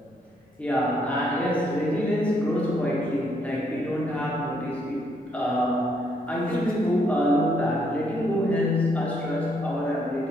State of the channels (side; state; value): both; normal; correlation 0.72